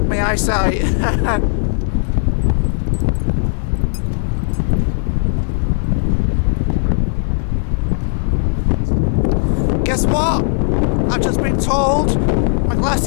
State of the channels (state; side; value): silent; right; 68 dB below the other